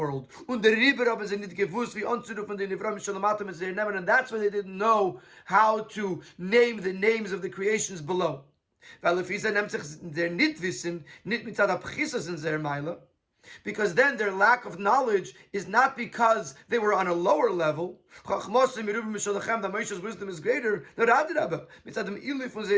Und der Rieber haben sie nicht gewusst, wie anzurufen den Nivram Shalamatim es nehmen, and that's why they didn't know how to name the names of the creations below. Weil if sie nimmt sich der nicht wissen, nicht mit der Pchisas in der Meile, because then their lack of knowledge is not because they were on a lower level. That Moshe's wisdom is greater.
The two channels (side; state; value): both; identical; correlation 1.00